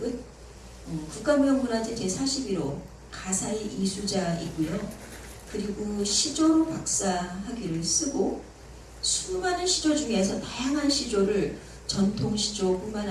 국가무형문화재 제41호 가사의 이수자이고요. 그리고 시조로 박사학위를 쓰고 수많은 시조 중에서 다양한 시조를 전통 시조뿐만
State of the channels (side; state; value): both; identical; correlation 1.00